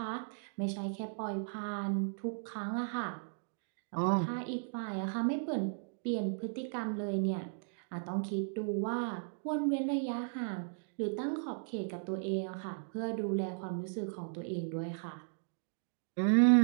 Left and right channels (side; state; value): left; silent; digital silence